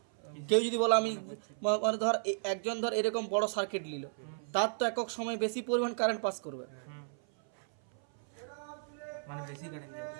কেউ যদি বলো আমি মানে ধর একজন ধর এরকম বড় সার্কিট নিল, তার তো একক সময় বেশি পরিমাণ কারেন্ট পাস করবে, মানে বেশি কারেন্ট যাবে।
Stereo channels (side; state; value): left; silent; 55 dB below the other